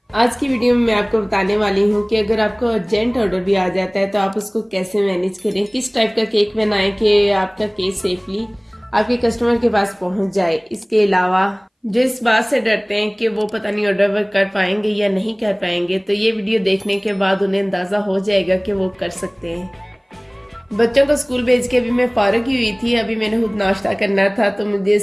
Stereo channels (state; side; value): identical; both; correlation 1.00